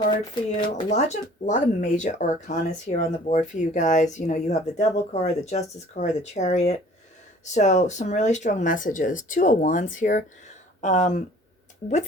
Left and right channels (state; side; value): normal; both; correlation 0.51